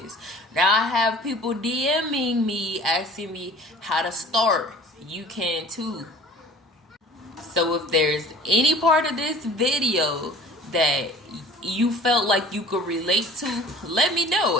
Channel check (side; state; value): both; normal; correlation 0.47